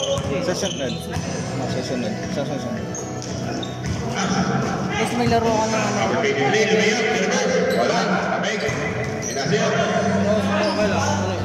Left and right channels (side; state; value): both; identical; correlation 1.00